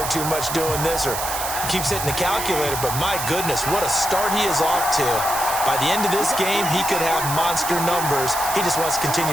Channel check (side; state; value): right; noise; hiss, 5 dB below the sound